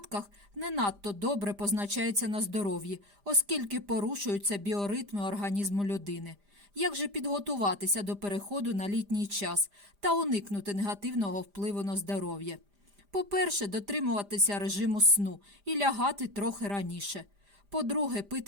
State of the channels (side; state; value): left; late; 5.0 ms